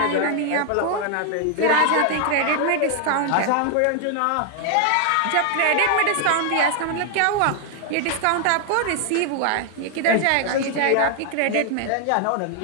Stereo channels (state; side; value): different; both; correlation 0.00